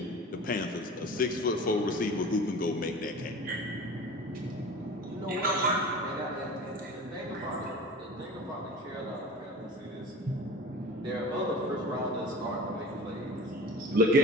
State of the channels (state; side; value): normal; both; correlation 0.38